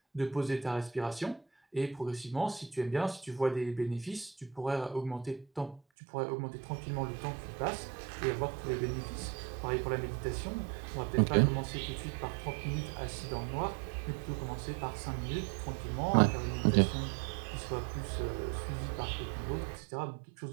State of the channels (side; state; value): left; drops out; at 5.8 s